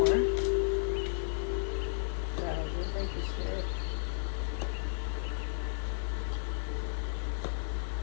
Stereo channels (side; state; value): right; silent; digital silence